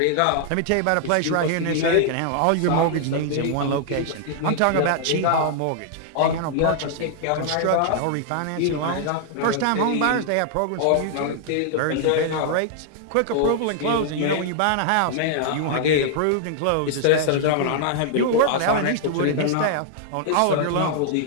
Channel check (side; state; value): both; different; correlation -0.01